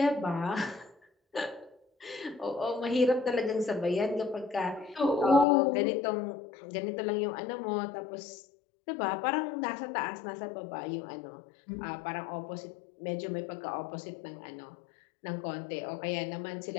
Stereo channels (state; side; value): drops out; right; at 5.5 s